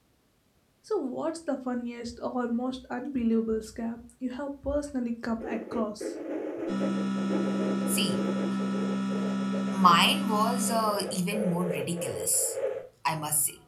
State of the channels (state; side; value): identical; both; correlation 1.00